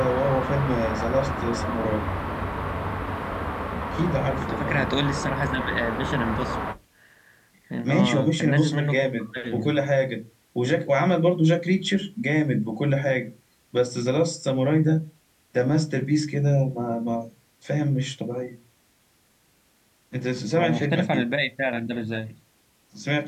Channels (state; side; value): identical; both; correlation 1.00